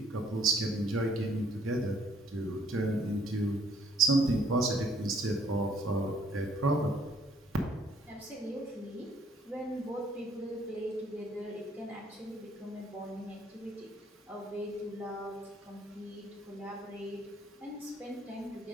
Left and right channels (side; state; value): both; normal; correlation 0.64